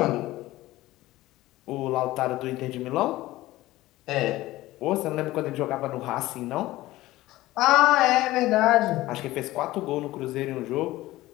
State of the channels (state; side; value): quieter; right; 17.2 dB